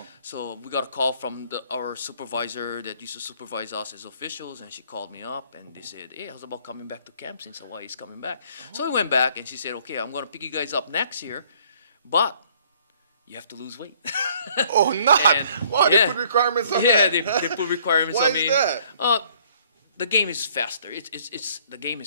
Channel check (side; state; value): both; inverted; correlation -0.61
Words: So we got a call from our supervisor that used to supervise us as officials, and she called me up and they said, hey, how's about coming back to camp since Hawaii is coming back? So we went back and she said, okay, I'm going to pick you guys up next year, but you have to lose weight. Oh, not. And- Wow, yeah. they put requirements on Yeah, that. they put requirements Why on me. is that? The game is faster. The game